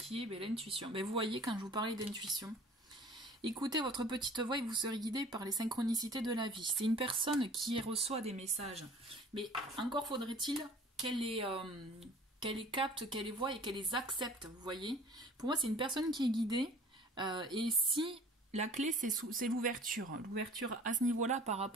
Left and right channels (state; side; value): normal; both; correlation 0.48